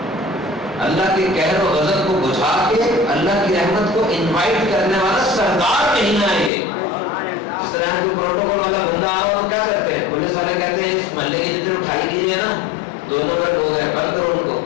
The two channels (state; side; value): drops out; right; at 6.5 s